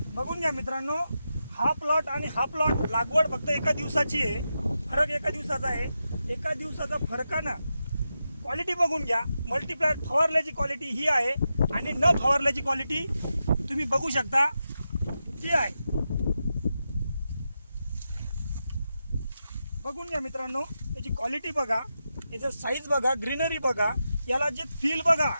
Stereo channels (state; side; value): inverted; both; correlation -0.88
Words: बघून घ्या मित्रांनो, हा प्लॉट आणि हा प्लॉट लागवड फक्त एका दिवसाची आहे. फरक एका दिवसाचा आहे. एका दिवसाचा फरकानं क्वालिटी बघून घ्या. मल्टीप्लायर फवारल्याची क्वालिटी ही आहे आणि न फवारल्याची क्वालिटी तुम्ही बघू शकता ती आहे. बघून घ्या मित्रांनो, त्याची क्वालिटी बघा, याचं साईज बघा, ग्रीनरी बघा, याला जे फील बघा,